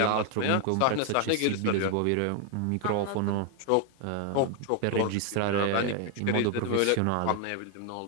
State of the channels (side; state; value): both; different; correlation 0.01